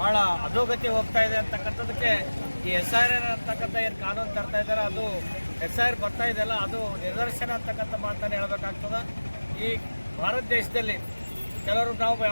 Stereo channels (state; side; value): inverted; both; correlation -1.00